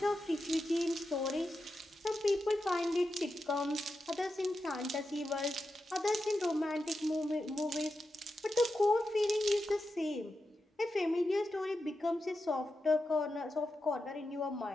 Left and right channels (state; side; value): normal; both; correlation 0.89